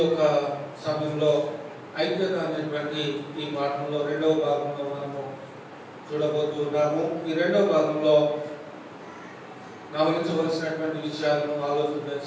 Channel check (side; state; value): both; identical; correlation 1.00